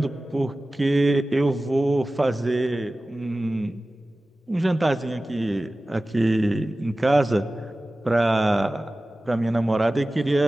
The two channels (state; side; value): normal; both; correlation 0.96